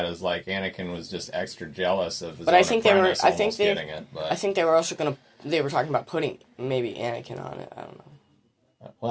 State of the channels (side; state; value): both; identical; correlation 1.00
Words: as like Anakin was just extra jealous of his own apprentice almost getting it. But I think they were also going to. They were talking about putting maybe Anakin on it. I don't know.